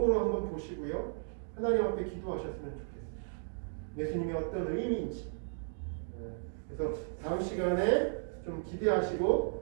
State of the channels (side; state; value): left; silent; digital silence